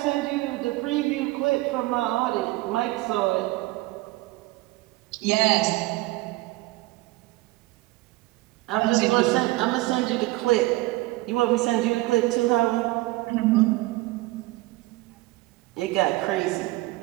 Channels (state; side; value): quieter; left; 20.2 dB